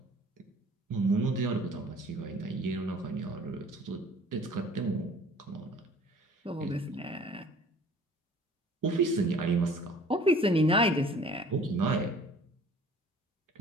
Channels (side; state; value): both; normal; correlation 0.50